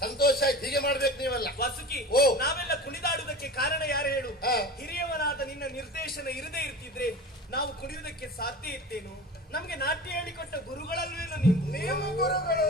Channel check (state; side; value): normal; both; correlation 0.34